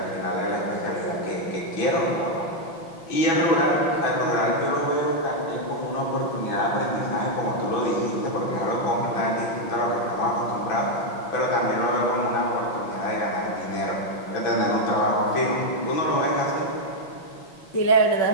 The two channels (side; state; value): right; late; 5.9 ms